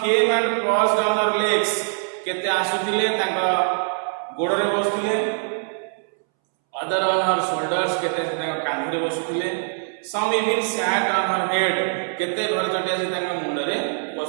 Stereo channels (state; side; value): silent; left; 63 dB below the other